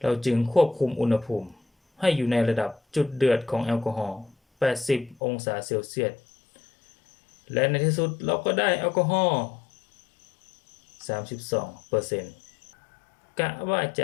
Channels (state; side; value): drops out; right; at 5.2 s